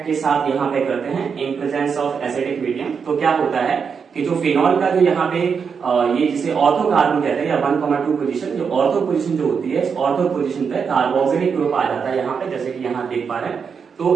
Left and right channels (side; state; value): left; quieter; 6.2 dB